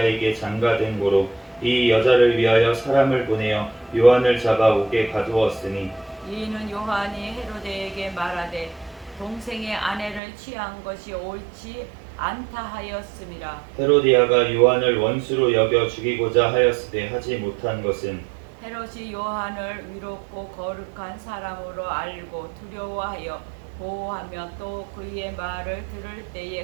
장가든 고로 이 여자를 위하여 사람을 보내어 요한을 잡아 옥에 가두었으니 이는 요한이 헤로데에게 말하되 동생의 아내를 취한 것이 옳지 않다 하였음이라. 헤로디아가 요한을 원수로 여겨 죽이고자 하였으되 하지 못한 것은 헤롯이 요한을 위롭고 거룩한 사람으로 알고 두려워하여 보호하며 또 그의 말을 들을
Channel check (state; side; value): drops out; left; at 10.2 s